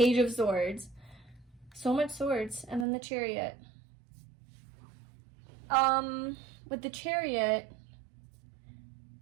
of Swords. So much swords. And then the Chariot. With the Chariot,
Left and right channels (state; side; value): drops out; left; at 2.9 s